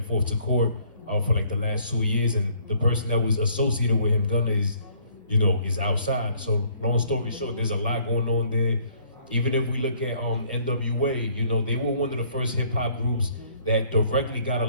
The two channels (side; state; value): both; inverted; correlation -0.62